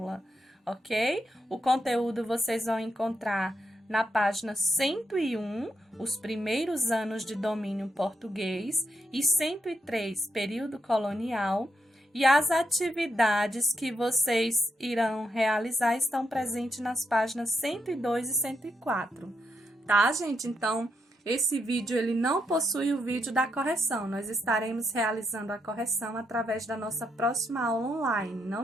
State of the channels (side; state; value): both; normal; correlation 0.81